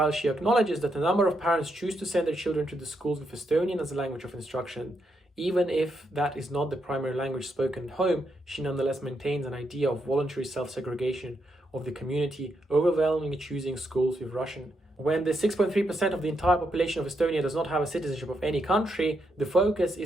she acknowledges that a number of parents choose to send their children to the schools with Estonian as a language of instruction, even if that is not the primary language spoken at home, she nonetheless maintains an idea of voluntary self-segregation of the community, overwhelmingly choosing schools with Russian. When the 6.3% of the entire population of Estonia does not have a citizenship of any country, the focus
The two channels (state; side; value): normal; both; correlation 0.80